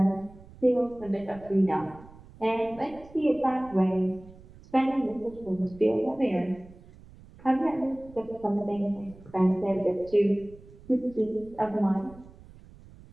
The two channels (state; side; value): noise; right; rumble, 21 dB below the sound